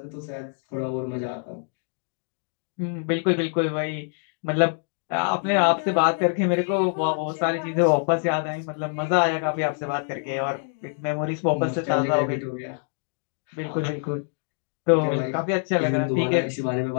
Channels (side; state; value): right; silent; 61 dB below the other